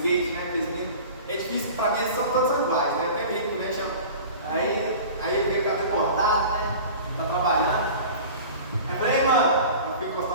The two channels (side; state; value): both; inverted; correlation -0.39